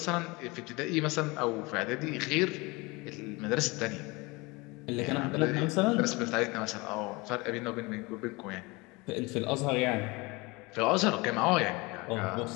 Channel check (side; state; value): right; quieter; 24.9 dB